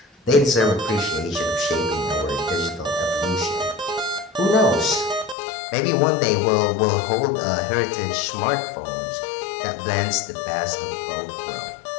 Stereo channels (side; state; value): right; drops out; at 5.4 s